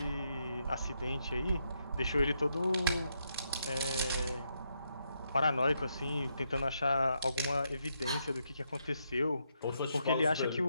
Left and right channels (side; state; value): both; inverted; correlation -0.79